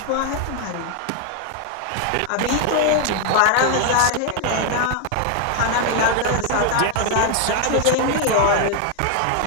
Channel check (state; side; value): different; both; correlation 0.00